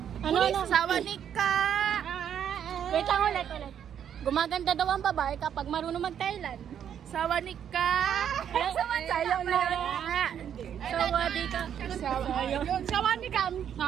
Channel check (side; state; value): left; quieter; 9.1 dB